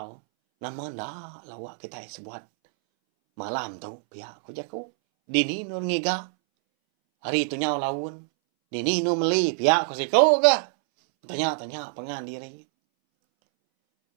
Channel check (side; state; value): left; silent; 61 dB below the other